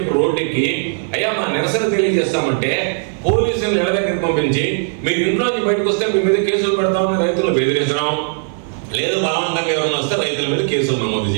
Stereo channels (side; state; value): left; silent; 67 dB below the other